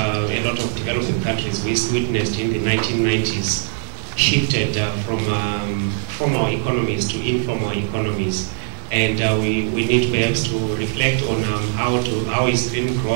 lot of developing countries witnessed in the 1990s shifted from formal economies to informal economies. And we need perhaps to reflect on how is green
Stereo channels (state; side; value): silent; left; digital silence